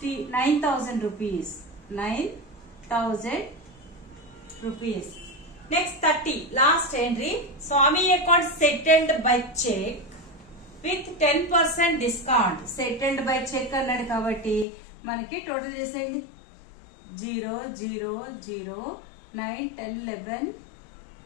rupees. 9,000 rupees. Next 30 last entry. Swami account settled by cheque with 10% discount. Settled by check అన్నాడు కాబట్టి మనకి total చేసేయండి. 0 0 0 9 10 11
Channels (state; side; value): drops out; right; at 14.7 s